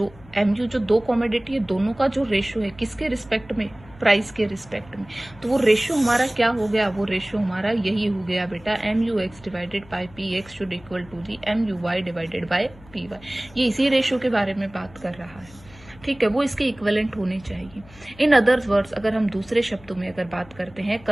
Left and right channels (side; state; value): left; noise; hum, 23 dB below the sound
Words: जो 2 कमोडिटी है, दोनों का जो रेशियो है किसके रिस्पेक्ट में? प्राइस के रिस्पेक्ट में। तो वो रेशियो हमारा क्या हो गया? वो रेशियो हमारा यही हो गया बेटा, MUX divided by PX should equal to the MUY divided by PY। ये इसी रेशियो के बारे में बात कर रहा है, ठीक है, वो इसके इक्विवेलेंट होने चाहिए। इन अदर वर्ड्स, अगर हम दूसरे शब्दों में अगर बात करते हैं,